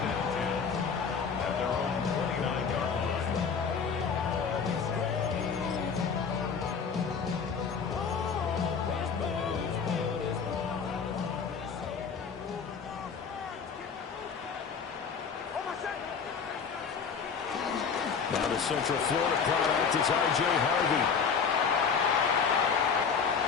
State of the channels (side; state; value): right; quieter; 6.1 dB